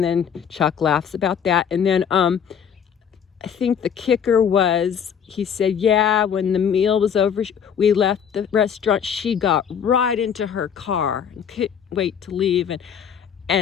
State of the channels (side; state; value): right; quieter; 7.9 dB